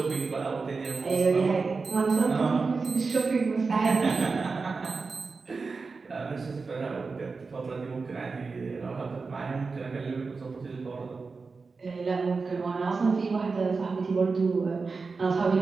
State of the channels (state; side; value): quieter; left; 4.4 dB